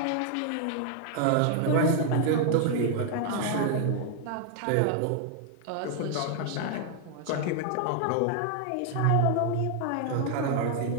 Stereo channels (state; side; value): different; both; correlation 0.00